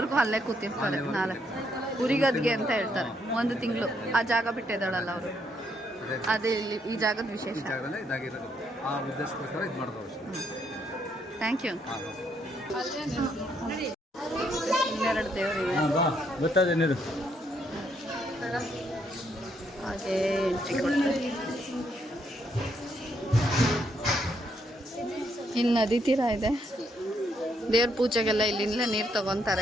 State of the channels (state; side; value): normal; both; correlation 0.74